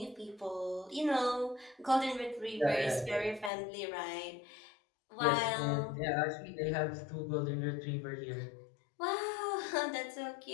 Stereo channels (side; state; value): right; drops out; at 3.5 s